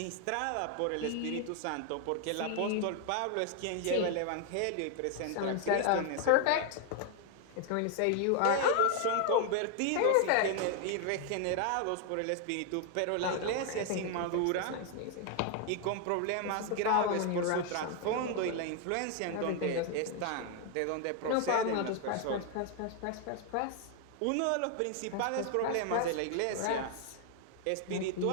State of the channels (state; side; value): different; both; correlation 0.00